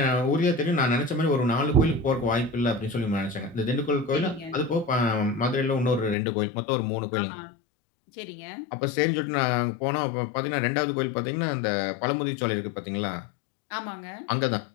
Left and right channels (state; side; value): drops out; right; at 6.2 s